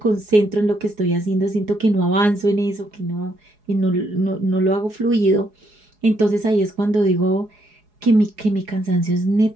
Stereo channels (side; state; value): left; late; 4.8 ms